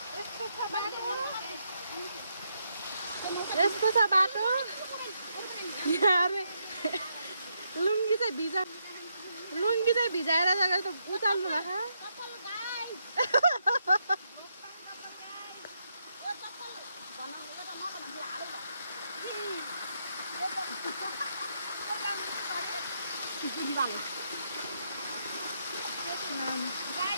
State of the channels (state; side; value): inverted; both; correlation -0.79